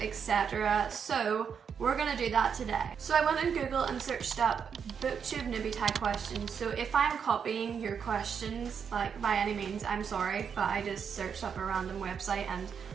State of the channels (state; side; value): quieter; left; 7.0 dB